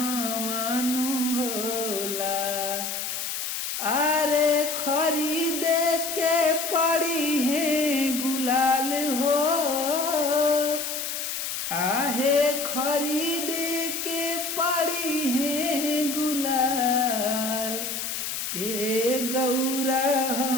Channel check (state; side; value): noise; left; hiss, 4 dB below the sound